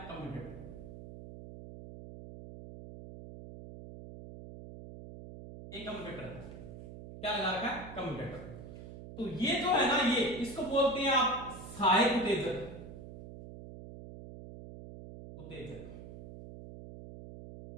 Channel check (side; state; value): right; noise; hum, 13 dB below the sound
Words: कम्यूटेटर। ये कम्यूटेटर क्या लगा रखा है? कम्यूटेटर। तो ये जो है ना, ये इसको बोलते हैं आप सहायक उत्तेजक,